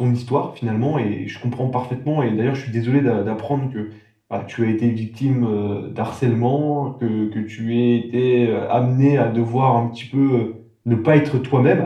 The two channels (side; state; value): both; identical; correlation 1.00